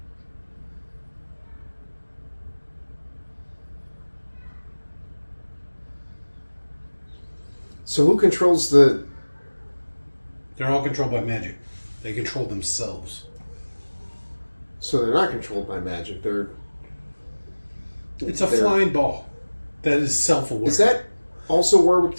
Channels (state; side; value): inverted; both; correlation -1.00